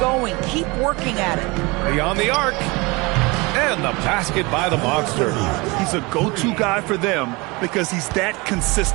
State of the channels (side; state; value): left; quieter; 25.3 dB